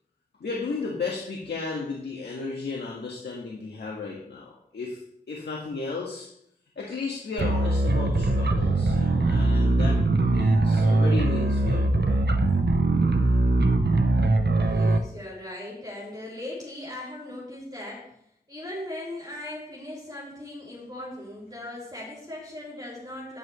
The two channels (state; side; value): normal; both; correlation 0.83